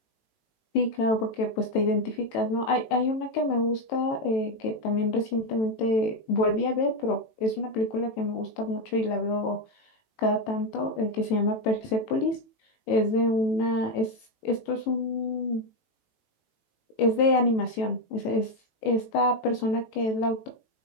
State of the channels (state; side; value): late; right; 18 ms